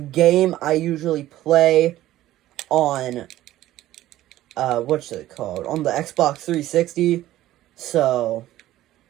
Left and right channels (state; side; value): quieter; left; 14.6 dB